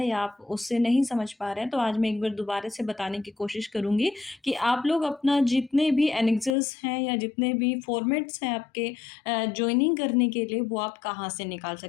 या आप उससे नहीं समझ पा रहे हैं, तो आज मैं एक बार दोबारा से बताने की कोशिश करूँगी कि आप लोग अपना जितने भी एनेक्सेस हैं या जितने भी फॉर्मेट्स हैं आपके जॉइनिंग करने के लिए, वो आप कहाँ से निकाल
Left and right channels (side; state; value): right; drops out; at 6.6 s